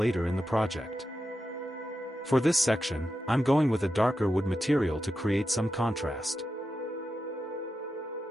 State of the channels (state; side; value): normal; both; correlation 0.89